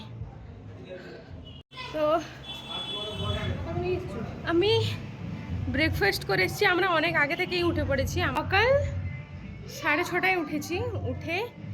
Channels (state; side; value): identical; both; correlation 1.00